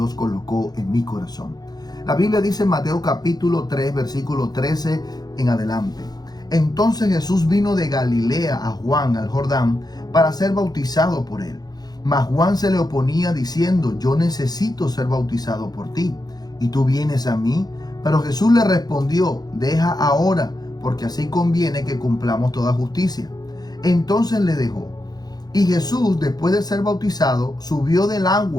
colocó en mi corazón. La Biblia dice en Mateo capítulo 3, versículo 13 en adelante. Entonces Jesús vino de Galilea a Juan al Jordán para ser bautizado por él. Mas Juan se le oponía diciendo: yo necesito ser bautizado por ti, y tú vienes a mí. Pero Jesús le respondió: deja ahora, porque así conviene que cumplamos toda justicia. Entonces le dejó. Y Jesús, después de ser bautizado, subió del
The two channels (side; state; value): right; late; 0.19 ms